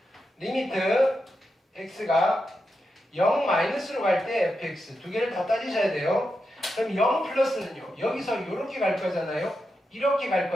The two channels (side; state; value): both; normal; correlation 0.87